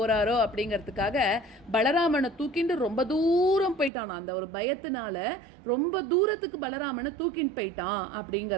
அப்படிங்கிறதுக்காக பலராமனை தூக்கிண்டு ரொம்ப தூரம் போயிட்டானா. அந்த ஒரு பயத்தினால ரொம்ப தூரத்துக்கு பலராமனை தூக்கின்னு போயிட்டான்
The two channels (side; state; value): left; drops out; at 3.9 s